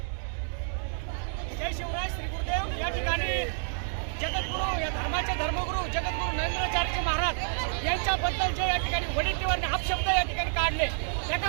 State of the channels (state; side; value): silent; left; digital silence